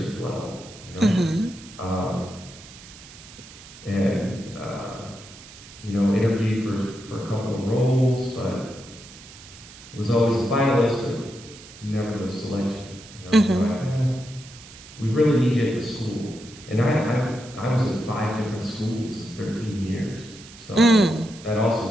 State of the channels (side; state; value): right; noise; hiss, 18 dB below the sound